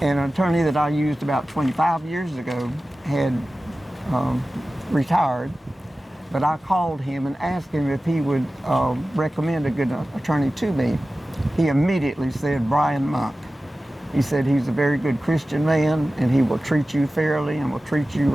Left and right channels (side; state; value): both; normal; correlation 0.95